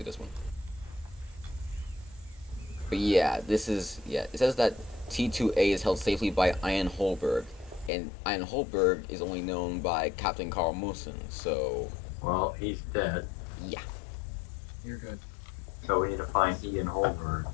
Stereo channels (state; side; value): drops out; right; at 7.9 s